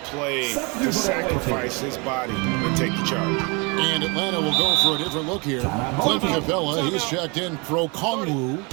play to sacrifice his body and take the charge. And Atlanta will go for a different look here. Clint Capella, he's checked in for Okongwu.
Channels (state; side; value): quieter; left; 30.0 dB